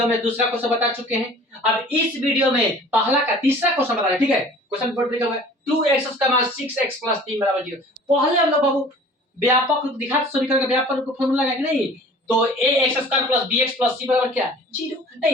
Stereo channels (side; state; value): both; normal; correlation 0.47